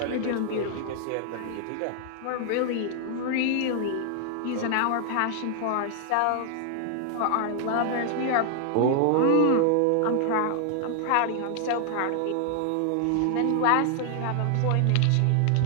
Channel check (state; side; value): different; both; correlation 0.00